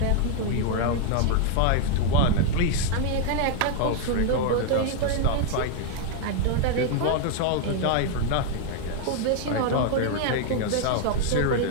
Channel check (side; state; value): both; different; correlation 0.00